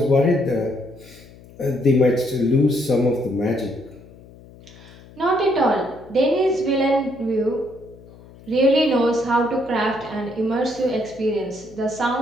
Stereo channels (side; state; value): left; noise; hum, 22 dB below the sound